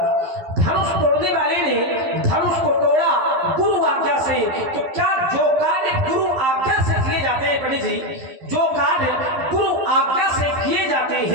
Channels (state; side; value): late; left; 11 ms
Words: धनुष तोड़ने वाले ने धनुष को तोड़ा गुरु आज्ञा से। तो क्या जो कार्य गुरु आज्ञा से किए जाते हैं, पंडित जी, जो कार्य गुरु आज्ञा से किए जाते